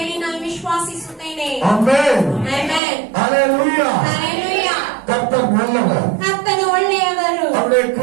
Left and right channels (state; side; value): drops out; left; at 2.8 s